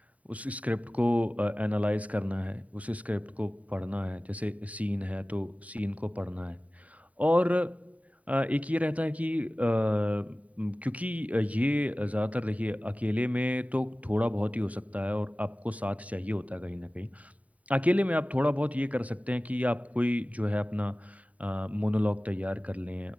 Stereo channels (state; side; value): late; left; 0.069 ms